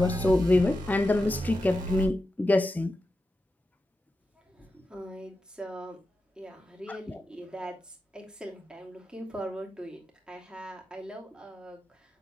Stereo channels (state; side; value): normal; both; correlation 0.90